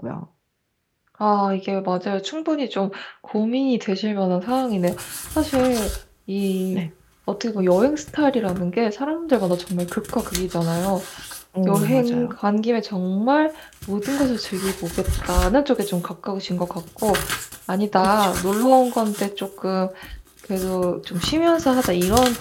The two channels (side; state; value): both; identical; correlation 1.00